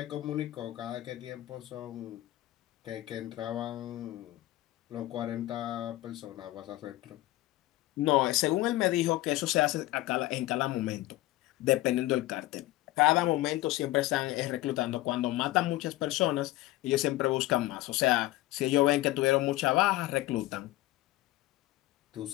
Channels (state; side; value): quieter; right; 17.2 dB